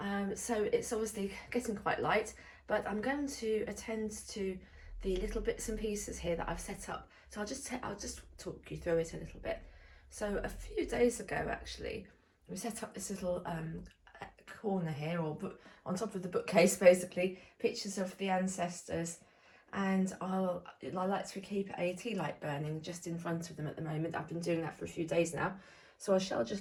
so it's obviously getting quite light, but I'm going to attend to the little bits and pieces here that I've set up. So I'll just talk you through it a little bit. So a few days ago, actually, we set up this little corner here, or on top of the bookcase, basically, pictures of the ancestors. And I like to keep a tea light burning just in front of them at the moment. I've been doing that for a few days now. So I shall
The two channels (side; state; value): both; identical; correlation 1.00